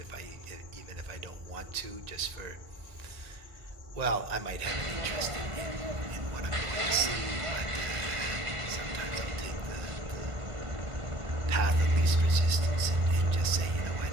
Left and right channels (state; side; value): late; left; 1.8 ms